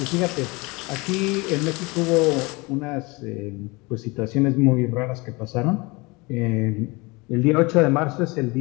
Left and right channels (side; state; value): right; quieter; 25.4 dB